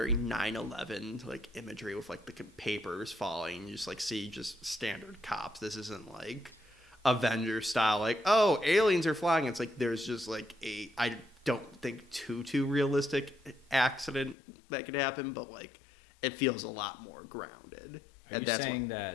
9/11 like imagery with like the papers falling. You just like see just standard cops. This isn't like Avengers style. Like, oh, aliens are flying. It's like there's just like I don't think too realistic accident that could happen, but like it feels a lot more grounded, and that's why.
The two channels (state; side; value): drops out; right; at 14.4 s